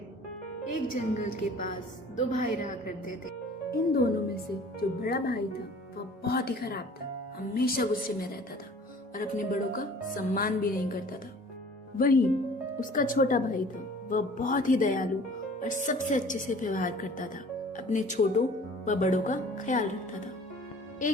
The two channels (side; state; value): both; normal; correlation 0.48